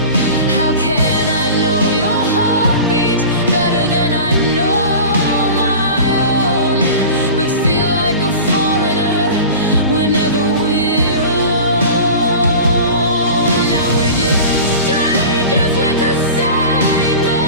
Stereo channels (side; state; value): both; inverted; correlation -0.35